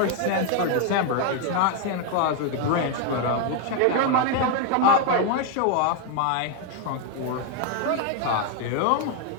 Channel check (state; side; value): different; both; correlation 0.01